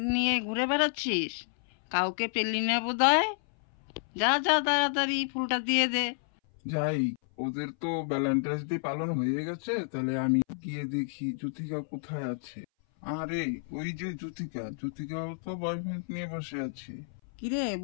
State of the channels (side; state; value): right; silent; 58 dB below the other